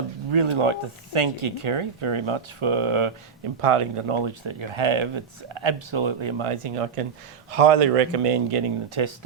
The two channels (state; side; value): quieter; left; 6.3 dB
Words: really like to thank you, Kerri, very much for imparting the knowledge that you have. It's absolutely amazing. I can highly recommend getting the test